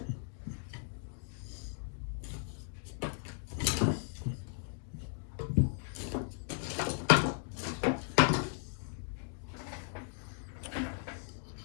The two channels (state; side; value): silent; right; 53 dB below the other